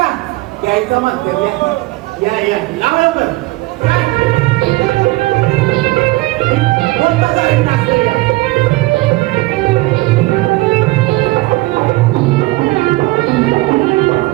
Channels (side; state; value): left; quieter; 20.8 dB